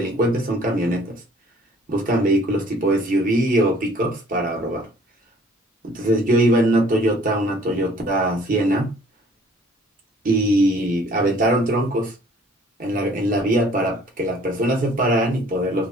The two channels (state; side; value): normal; both; correlation 0.55